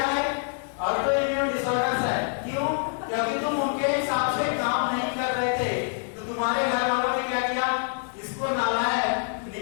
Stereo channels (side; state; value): right; silent; 61 dB below the other